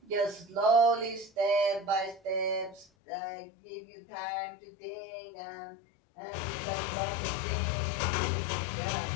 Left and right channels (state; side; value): drops out; right; at 2.9 s